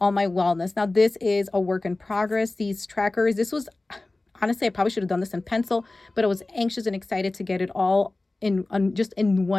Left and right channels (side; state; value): right; quieter; 3.0 dB